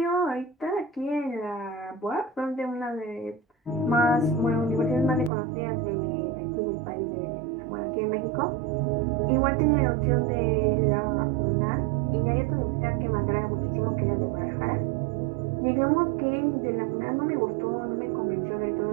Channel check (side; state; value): left; drops out; at 5.3 s